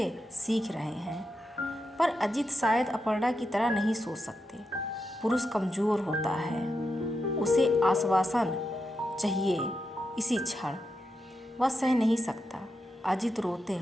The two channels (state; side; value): normal; both; correlation 0.86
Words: सीख रहे हैं। पर अजीत शायद अपर्णा की तरह नहीं सोच सकते। पुरुष कमज़ोर होता है, उसे आश्वासन चाहिए इसी क्षण। वह सह नहीं सकता। अजीत रोते